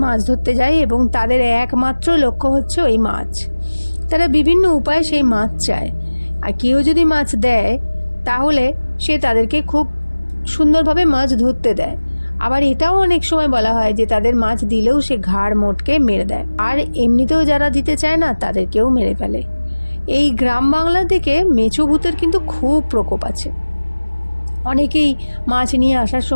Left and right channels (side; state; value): both; inverted; correlation -1.00